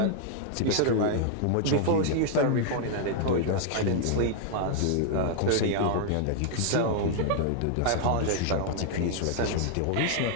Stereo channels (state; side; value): different; both; correlation 0.00